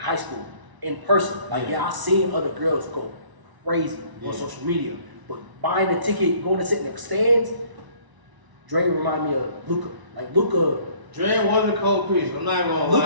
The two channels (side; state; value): left; late; 1.0 ms